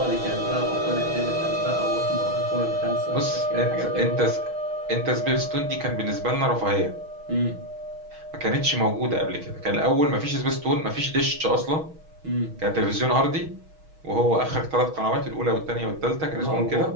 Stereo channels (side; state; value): left; late; 6.3 ms